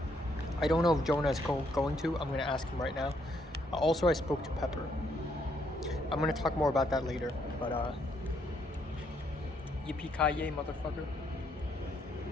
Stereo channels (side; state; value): both; normal; correlation 0.72